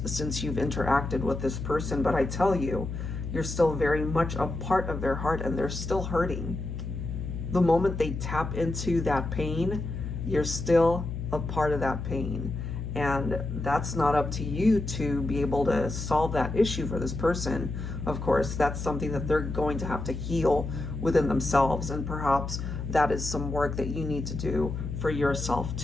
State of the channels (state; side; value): noise; left; hum, 5 dB below the sound